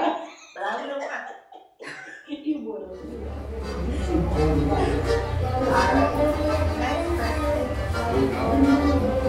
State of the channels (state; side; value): identical; both; correlation 1.00